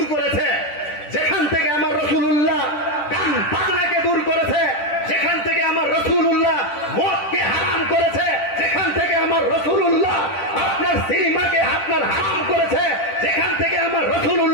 করেছে, যেখান থেকে আমার রাসূলুল্লাহ গান বাজনাকে দূর করেছে, যেখান থেকে আমার রাসূলুল্লাহ মদকে হারাম করেছে, যেখান থেকে আমার রাসূলুল্লাহ আপনার সিনেমাকে আপনার হারাম করেছে, যেখান থেকে আমার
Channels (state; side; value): late; right; 10 ms